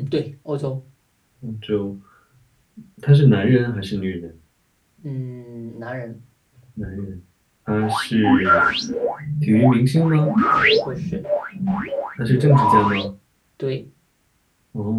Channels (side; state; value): both; identical; correlation 1.00